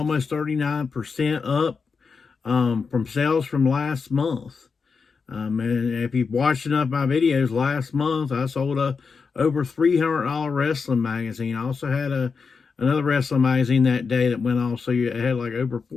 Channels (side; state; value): right; quieter; 5.2 dB